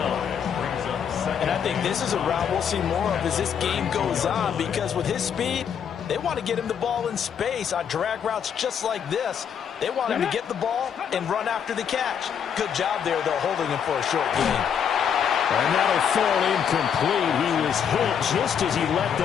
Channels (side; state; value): right; quieter; 7.9 dB